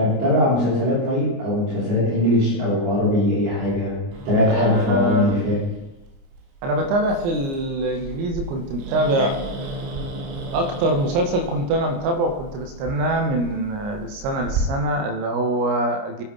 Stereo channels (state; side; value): late; left; 29 ms